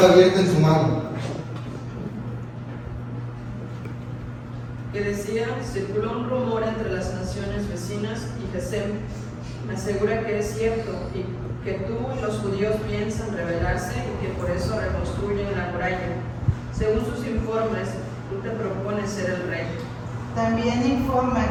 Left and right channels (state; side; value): identical; both; correlation 1.00